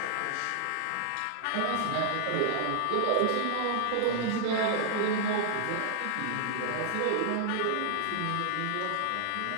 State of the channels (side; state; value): both; different; correlation 0.00